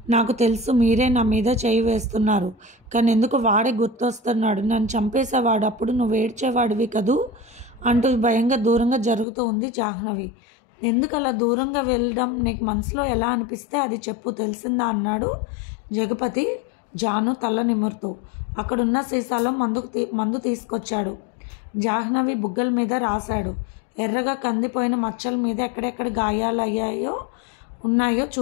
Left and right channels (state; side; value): drops out; right; at 9.2 s